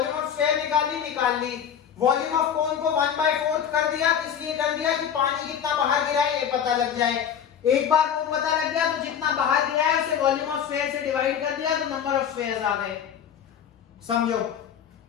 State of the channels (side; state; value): right; quieter; 8.5 dB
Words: ऑफ स्फेयर निकाल ली। वॉल्यूम ऑफ कोन को 1/4 कर दिया, इसलिए कर दिया कि पानी कितना बाहर गिरा है ये पता लग जाए। एक बार वो पता लग गया तो जितना बाहर गिरा है उसे वॉल्यूम ऑफ स्फेयर से डिवाइड कर दिया तो नंबर ऑफ स्फेयर्स आ गए। समझो,